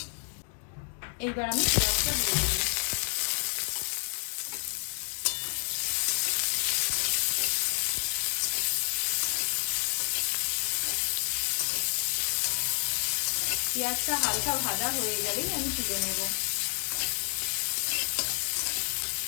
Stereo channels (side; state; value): right; silent; 56 dB below the other